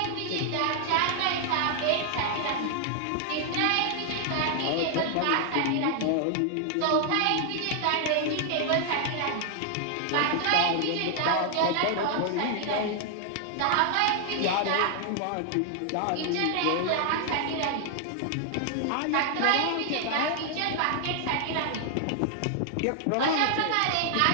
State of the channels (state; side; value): different; both; correlation 0.00